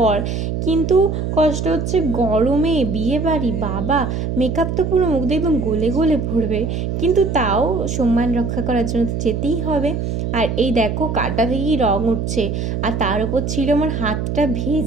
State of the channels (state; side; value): noise; right; hum, 2 dB below the sound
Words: কিন্তু কষ্ট হচ্ছে গরমে বিয়ে বাড়ি, বাবা মেকআপ তো পুরো মুখ দিয়ে একদম গলে গলে পড়বে, কিন্তু তাও সম্মান রক্ষা করার জন্য তো যেতেই হবে। আর এই দেখো কাটা থেকেই রং উঠছে, আর তার উপর ছিল আমার হাতটা